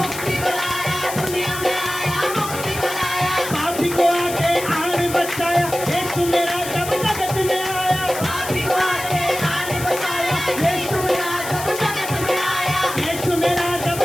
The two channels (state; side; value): noise; left; hiss, 9 dB below the sound